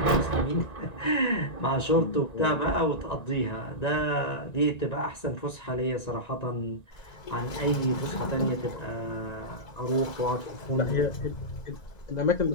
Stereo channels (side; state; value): right; late; 2.0 ms